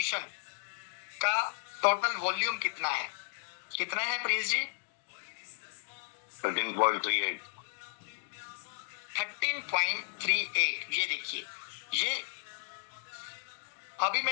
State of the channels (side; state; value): right; silent; digital silence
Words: का टोटल वॉल्यूम कितना है प्रिंस जी, 13.38। 13.38। ये देखिए, ये अभी